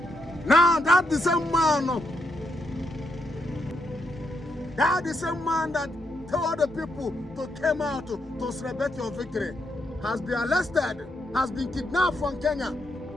Now that the same man that told the people to come out to celebrate your victory has been arrested, has been kidnapped from Kenya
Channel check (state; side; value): normal; both; correlation 0.80